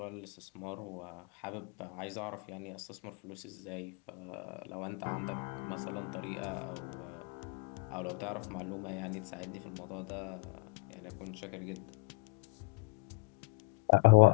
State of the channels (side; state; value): right; quieter; 26.2 dB